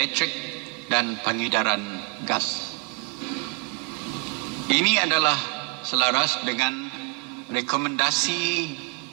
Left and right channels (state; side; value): quieter; left; 31.9 dB